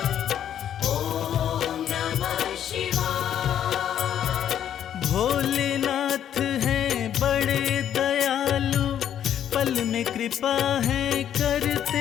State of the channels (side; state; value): right; quieter; 10.0 dB